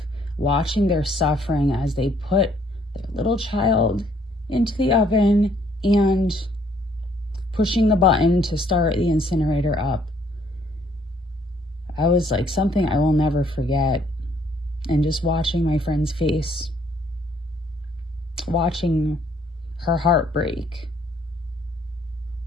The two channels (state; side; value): normal; both; correlation 0.65